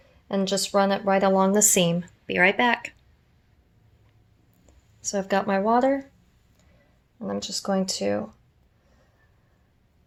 and just run it right along the seam. Be right back. So I've got my water, and I'm just going to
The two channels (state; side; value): identical; both; correlation 1.00